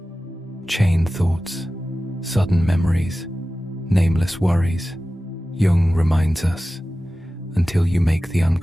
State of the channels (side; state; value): both; normal; correlation 0.95